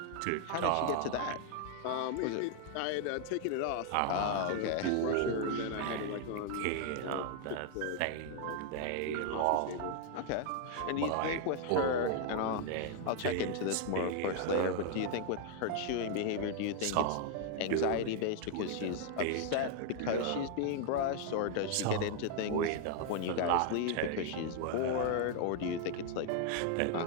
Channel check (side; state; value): both; different; correlation 0.00